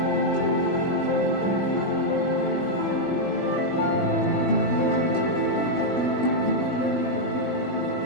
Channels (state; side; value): late; right; 21 ms